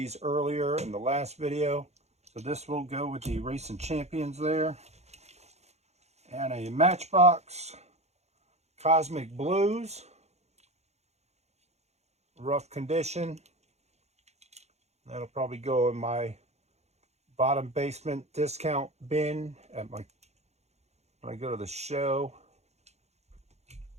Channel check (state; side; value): late; left; 0.32 ms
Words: earlier in the last video. So this will go with the Racing Champions there. And a Matchbox Cosmic Blues. Rough condition. That'll probably go in my bottom basement discount bin at my when I go to the show.